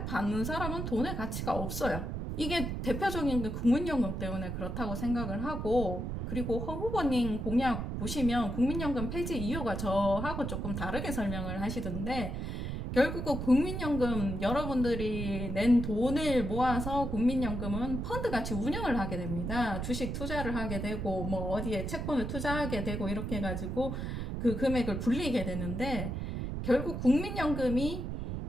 받는 사람은 돈의 가치가 없어요. 이게 대표적인 게 국민연금 때문에 그렇다고 생각을 하고, 그리고 허 후보님 공약 보시면 국민연금 폐지 이유가 저하고 조금 다르게 설명을 하시던데, 결국은 국민연금 여러분들이 낸 돈을 모아서 국민연금은 펀드같이 운영을 하게 됩니다. 주식 투자를 하게 되고 뭐 어디에 채권을 투자하게 되고 이렇게 해가지고 그 금액을 불리게 되는데, 결국 국민연금이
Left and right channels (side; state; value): right; noise; rumble, 4 dB below the sound